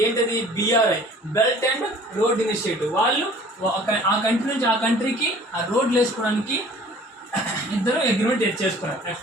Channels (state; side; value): normal; both; correlation 0.50